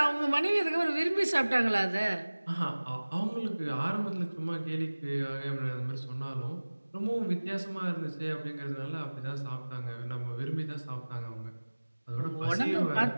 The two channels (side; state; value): both; inverted; correlation -1.00